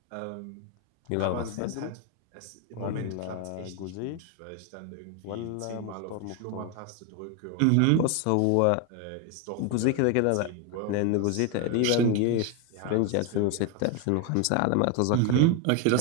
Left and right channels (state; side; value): different; both; correlation 0.01